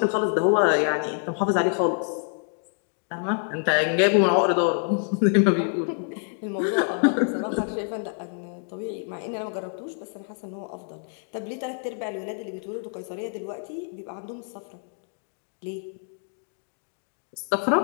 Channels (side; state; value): right; silent; 57 dB below the other